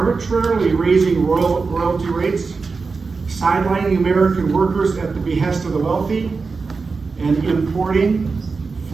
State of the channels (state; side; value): quieter; left; 4.5 dB